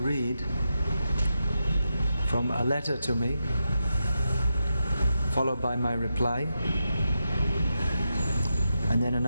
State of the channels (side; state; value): both; inverted; correlation -0.87